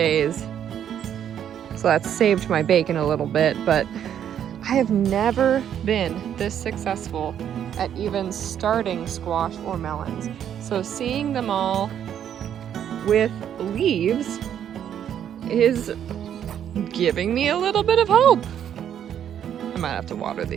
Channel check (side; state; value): left; quieter; 9.5 dB